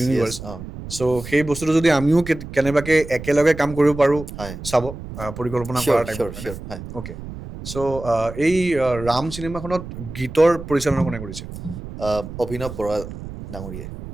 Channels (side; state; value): right; noise; rumble, 11 dB below the sound